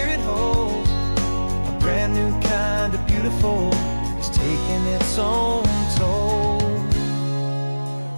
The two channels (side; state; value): both; inverted; correlation -1.00